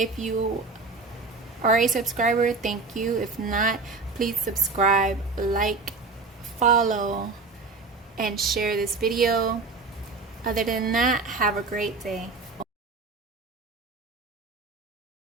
you are a subscriber, thank you. If not, please subscribe, like, follow, and share this video. Other than that, have a great day.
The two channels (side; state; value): left; quieter; 4.1 dB